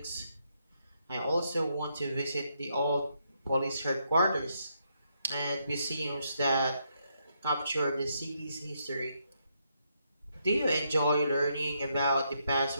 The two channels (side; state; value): both; inverted; correlation -0.78